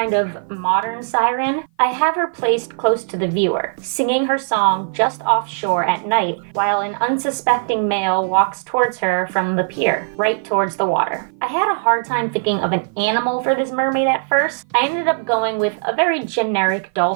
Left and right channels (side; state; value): left; silent; 56 dB below the other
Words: of modern siren. I have her placed close to the viewer, singing her song just offshore at night, while an unsuspecting male walks towards her from the pier, right towards the water. I had a hard time thinking of an animal for this mermaid at first. I ended up going with a very generic